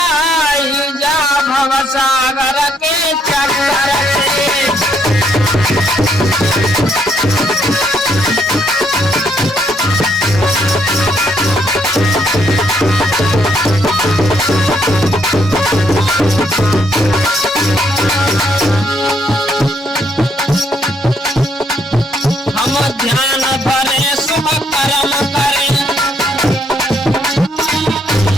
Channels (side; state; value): both; normal; correlation 0.71